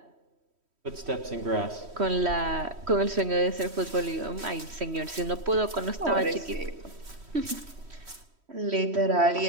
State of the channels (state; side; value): late; left; 3.1 ms